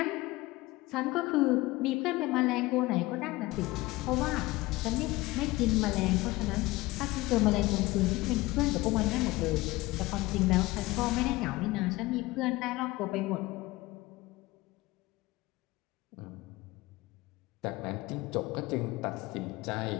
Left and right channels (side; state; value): right; quieter; 20.1 dB